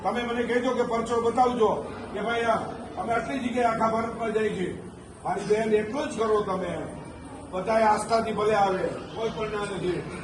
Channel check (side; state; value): both; identical; correlation 1.00